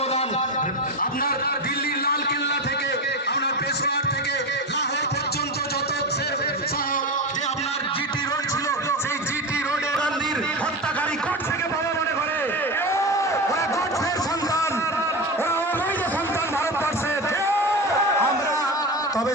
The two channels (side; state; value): both; normal; correlation 0.21